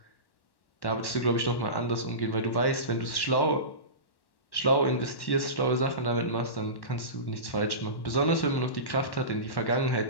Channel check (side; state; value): right; late; 1.1 ms